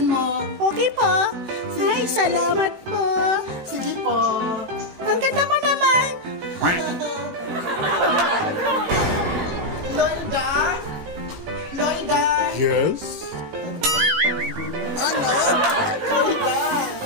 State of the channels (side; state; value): left; late; 17 ms